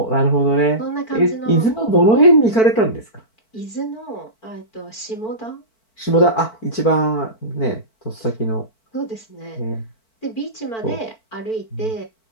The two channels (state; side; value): late; right; 4.5 ms